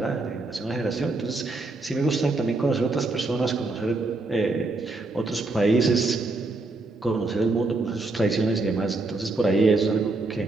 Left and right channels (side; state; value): left; quieter; 3.2 dB